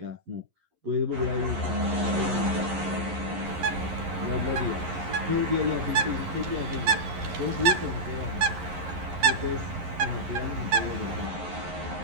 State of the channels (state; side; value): late; left; 11 ms